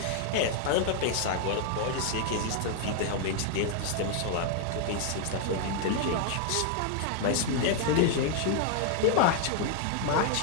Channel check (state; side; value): different; both; correlation 0.00